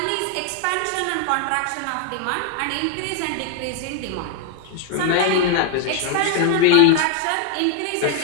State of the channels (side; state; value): both; different; correlation 0.00